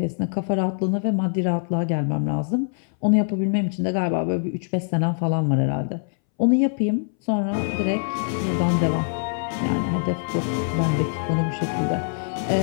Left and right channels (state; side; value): silent; right; 61 dB below the other